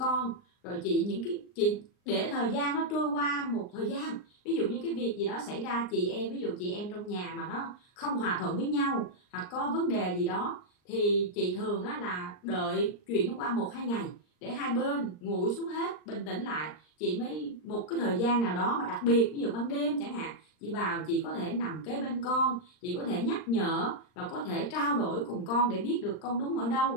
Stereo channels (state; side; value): late; right; 39 ms